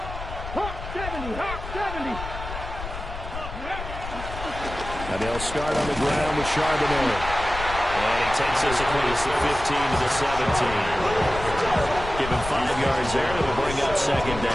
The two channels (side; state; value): left; noise; rumble, 9 dB below the sound